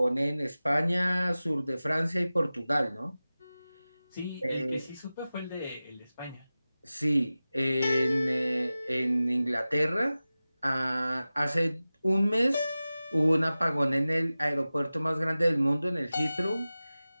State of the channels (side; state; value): both; inverted; correlation -0.96